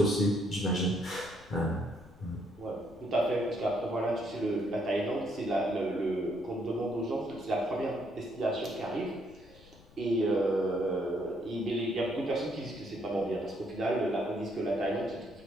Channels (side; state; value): left; noise; rumble, 23 dB below the sound